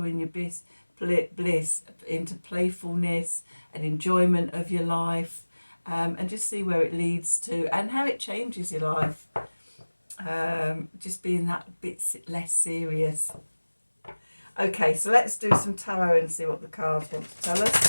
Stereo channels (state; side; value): inverted; both; correlation -1.00